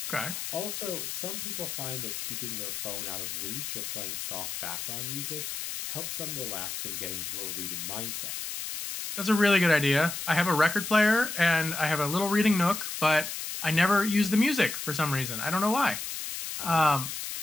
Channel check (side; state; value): left; noise; hiss, 6 dB below the sound